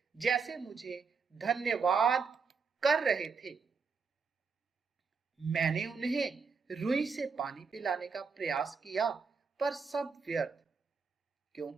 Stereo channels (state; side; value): quieter; left; 5.2 dB